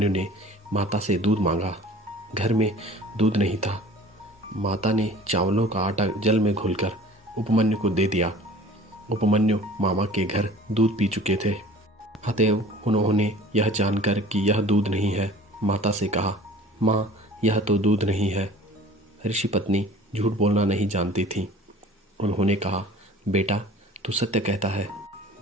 ने माता से दूध मांगा। घर में दूध नहीं था। माता ने चावलों का आटा जल में घोलकर उपमन्यु को दे दिया। उपमन्यु मामा के घर दूध पी चुके थे। अतएव उन्होंने यह जानकर कि यह दूध नहीं है, माता से कहा, माँ, यह तो दूध नहीं है। ऋषि पत्नी झूठ बोलना नहीं जानती थी। उन्होंने कहा, बेटा, तू सत्य कहता है।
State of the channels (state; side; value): normal; both; correlation 0.46